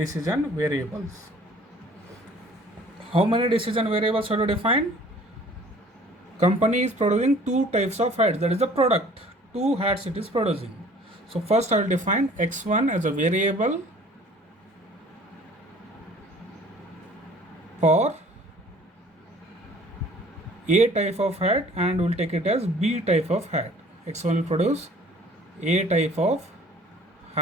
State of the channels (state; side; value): normal; both; correlation 0.52